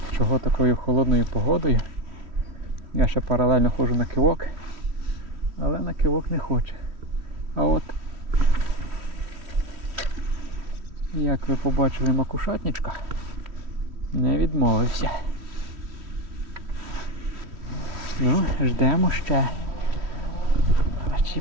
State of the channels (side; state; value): left; late; 3.1 ms